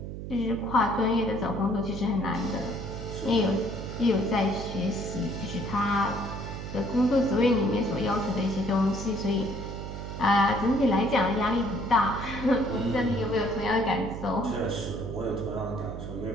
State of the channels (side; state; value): right; noise; hum, 8 dB below the sound